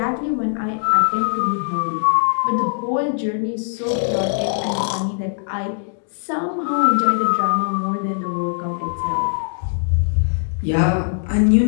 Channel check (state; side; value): silent; right; digital silence